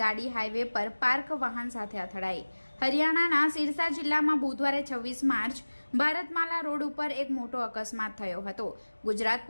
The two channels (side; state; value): both; inverted; correlation -1.00